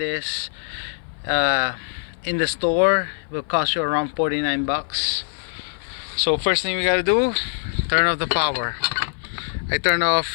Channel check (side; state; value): right; silent; 58 dB below the other